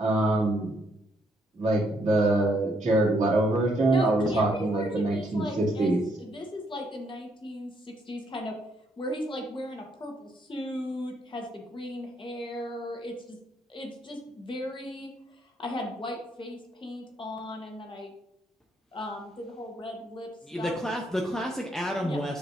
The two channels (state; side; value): normal; both; correlation 0.73